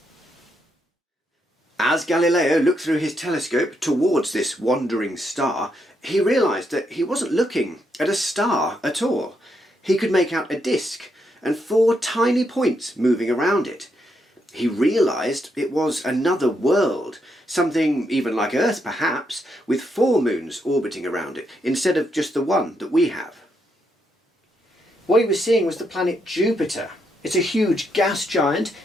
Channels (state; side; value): normal; both; correlation 0.79